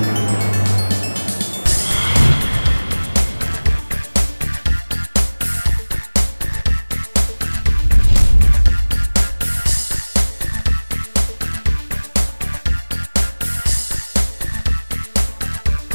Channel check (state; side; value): inverted; both; correlation -1.00